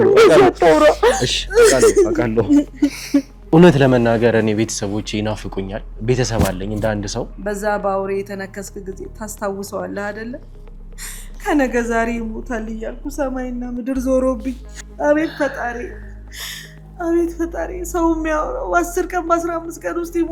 እሺ አውቃለሁ እውነት ለመናገር እኔ ቤተሰቦቼ ይናፍቁኛል ቤተሰብ አለኝ እንደ አንድ ሰው በዛ ባውሬ የተነከስክ ጊዜ ታስታውሰዋለህ አይደለ ከነገ ዛሬ ይሞታል እያልኩ ሰማይና ምድር ዞሮብኝ አቤት ፈጣሪ ሰው የሚያወራው 10 ቀን በ15 ቀን ውስጥ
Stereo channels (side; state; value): both; identical; correlation 1.00